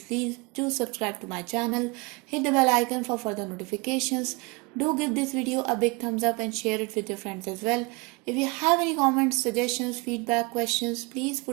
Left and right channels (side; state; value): left; quieter; 27.8 dB